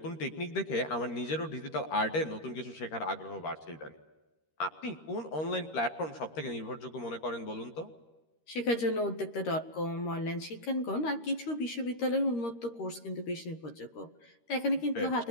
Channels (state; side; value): late; right; 13 ms